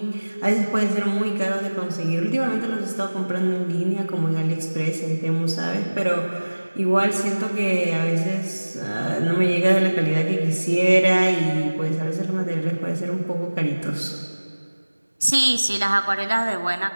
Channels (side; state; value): both; inverted; correlation -1.00